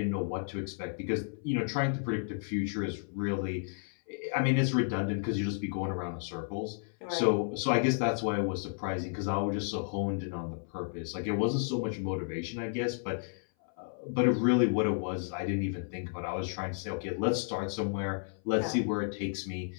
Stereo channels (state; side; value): silent; right; 56 dB below the other